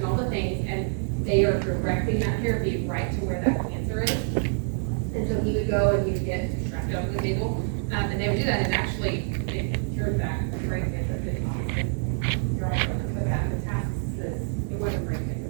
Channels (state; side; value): silent; left; 60 dB below the other